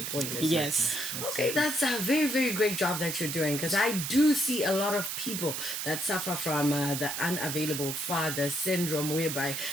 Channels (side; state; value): right; noise; hiss, 3 dB below the sound